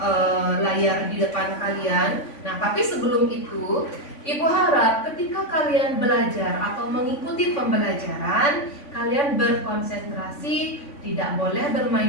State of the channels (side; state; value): right; late; 3.5 ms